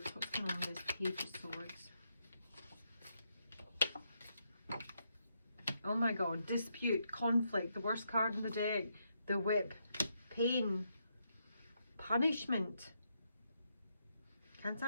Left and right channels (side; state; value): both; inverted; correlation -0.79